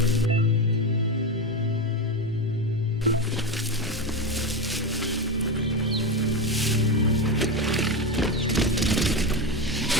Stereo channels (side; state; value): both; normal; correlation 0.16